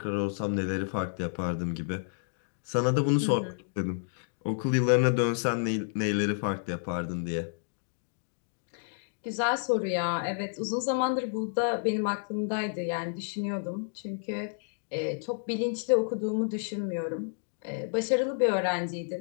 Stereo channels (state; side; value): silent; right; digital silence